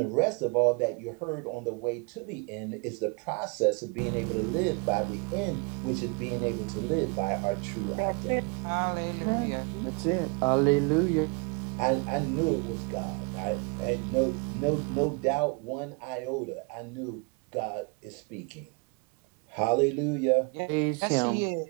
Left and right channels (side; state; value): left; quieter; 32.3 dB